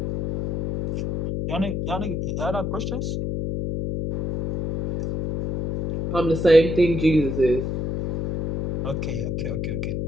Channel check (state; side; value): noise; left; hum, 2 dB below the sound